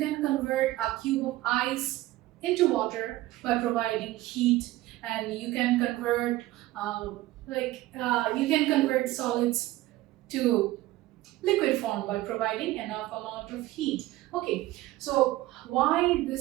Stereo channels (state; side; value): quieter; left; 16.9 dB